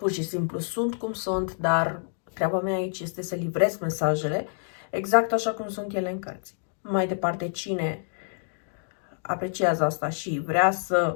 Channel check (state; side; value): silent; right; digital silence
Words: și simplu sunt cum sunt, dar treaba mea aici este să livrez mesajele exact așa cum sunt ele în cărți. Mai departe, cine apreciază asta și vrea